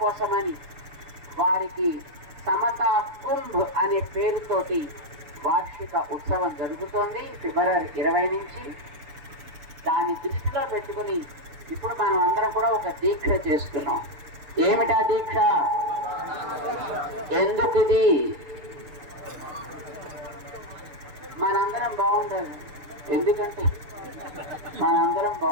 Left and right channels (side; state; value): left; late; 6.7 ms